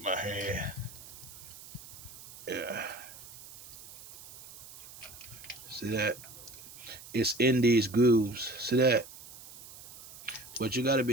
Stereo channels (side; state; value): right; noise; hiss, 16 dB below the sound